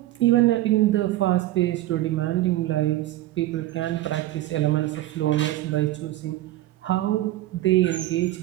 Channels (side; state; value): left; quieter; 15.8 dB